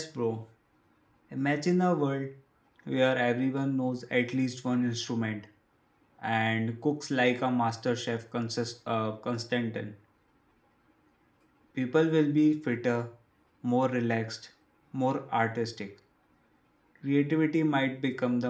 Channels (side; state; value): both; identical; correlation 1.00